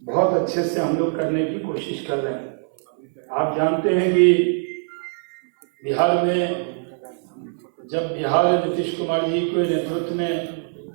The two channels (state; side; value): silent; left; 64 dB below the other